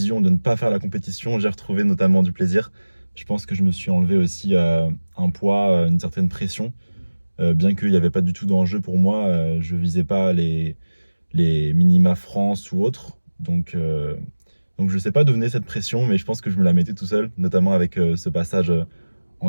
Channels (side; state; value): both; inverted; correlation -1.00